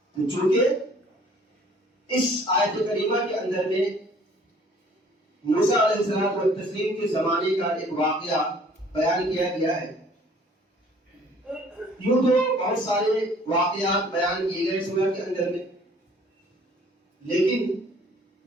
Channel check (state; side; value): normal; both; correlation 0.55